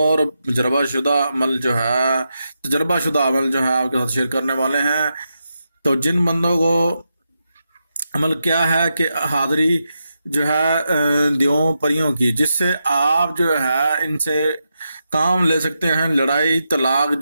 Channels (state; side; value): inverted; both; correlation -0.86